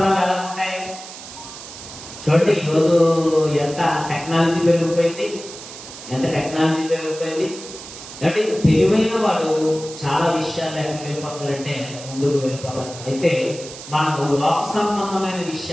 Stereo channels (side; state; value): right; noise; hiss, 14 dB below the sound